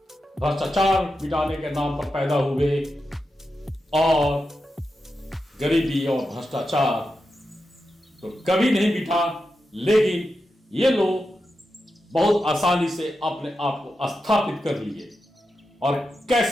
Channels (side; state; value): both; normal; correlation 0.89